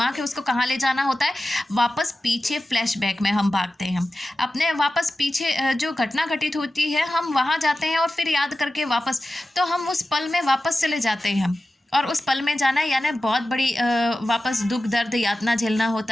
है उसको कहाँ ले जाना होता है, वापस पीछे फ्लैशबैक में हम भागते हैं। अपने वापस पीछे जो घटना घटित होती है हम वहाँ जाते हैं और फिर याद करके वापस, तो हम उस पल में वापस चले जाते हैं। और उस पल में जाना यानी बहुत बड़ी वापस दुख, दर्द, यातना झेलना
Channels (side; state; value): both; normal; correlation 0.94